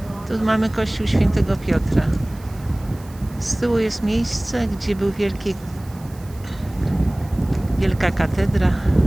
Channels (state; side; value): noise; right; hiss, 24 dB below the sound